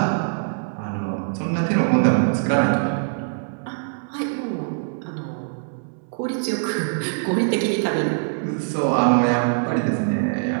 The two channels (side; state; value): left; silent; 63 dB below the other